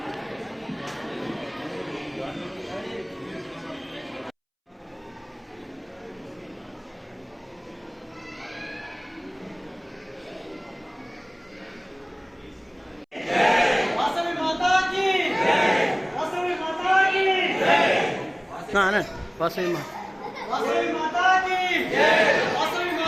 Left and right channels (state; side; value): identical; both; correlation 1.00